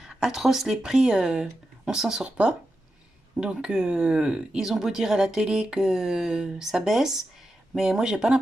atroce les prix, on s'en sort pas. Donc ils ont beau dire à la télé que ça baisse, mais moi j'ai pas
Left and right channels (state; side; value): normal; both; correlation 0.89